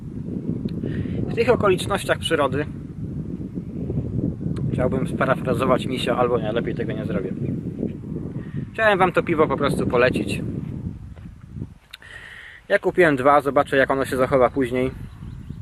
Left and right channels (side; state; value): both; identical; correlation 1.00